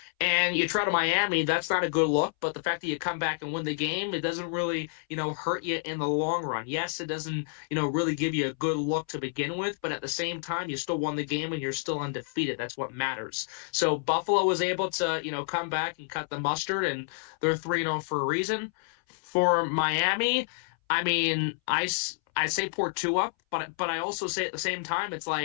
And you try to Miami, that's not a good look. But the fact that you come back and win the game, it doesn't really, hurt you in the long run. Yes, it doesn't, really give you a good look to begin with. But at the same time, you still won the game and you're still undefeated. That's what matters. So Buffalo was able to, come back and cut the mustard, and they're 3-0 for a reason. For Miami, I mean, I say poor Tua, but I also say at the same time, it's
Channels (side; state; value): right; silent; 59 dB below the other